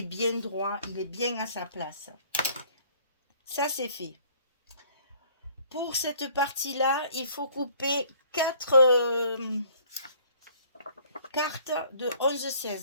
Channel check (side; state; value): both; inverted; correlation -0.57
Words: bien droit, il est bien à sa place. Ça, c'est fait. Pour cette partie-là, il faut couper 4 cartes de